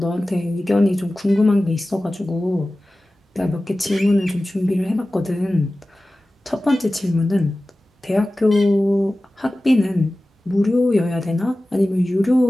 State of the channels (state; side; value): normal; both; correlation 0.96